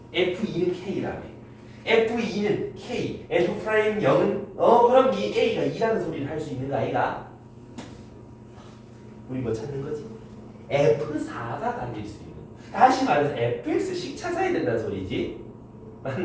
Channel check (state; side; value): identical; both; correlation 1.00